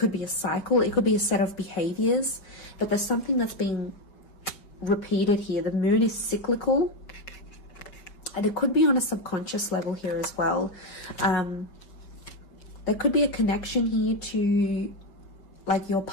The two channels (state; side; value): late; right; 5.2 ms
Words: be a cycle, it could be a set of behaviors, but there's something that's being repeated here. The Moon is cyclical, and it could be on a subconscious level here as well. There could be a connection here to like your